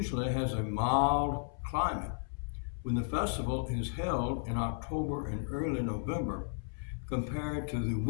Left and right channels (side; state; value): right; silent; 55 dB below the other